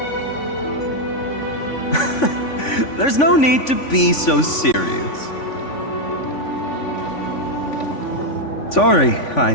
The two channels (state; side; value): late; right; 3.5 ms